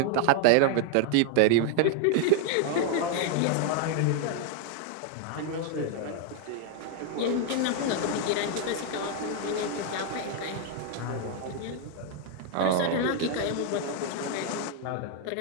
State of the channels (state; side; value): different; both; correlation 0.00